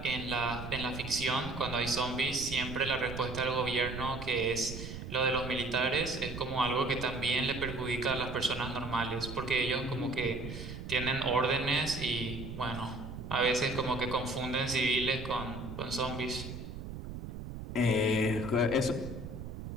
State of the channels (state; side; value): noise; right; rumble, 8 dB below the sound